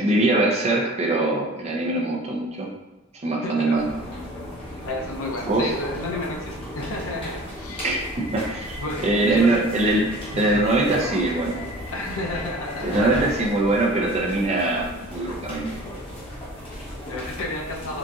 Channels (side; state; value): both; normal; correlation 0.44